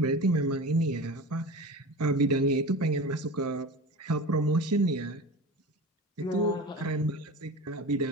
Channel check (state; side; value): normal; both; correlation 0.32